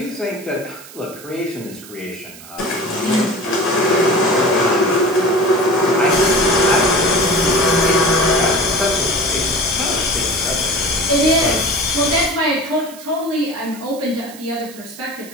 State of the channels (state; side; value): noise; right; hiss, 18 dB below the sound